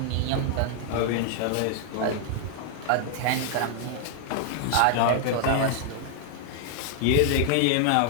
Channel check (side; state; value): both; different; correlation 0.00